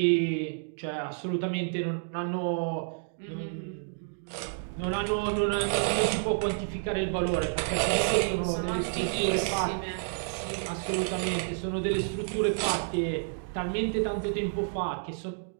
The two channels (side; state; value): left; silent; digital silence